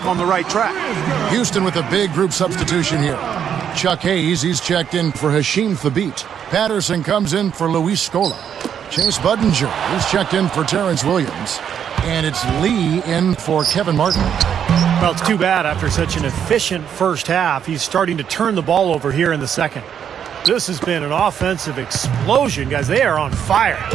on the right track. Houston with a big group substitution here. Chuck Hayes, he's checked in for Hasheem Thabeet. Patterson comes in for Luis Scola. Chase Budinger. He's checked in for Terrence Williams. And it's Lee in for Kevin Martin. Well, it's too bad after such an efficient first half. He's starting to turn the ball over here in the second. This has been an offensive explosion, guys. They are on fire.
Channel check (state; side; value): quieter; left; 8.6 dB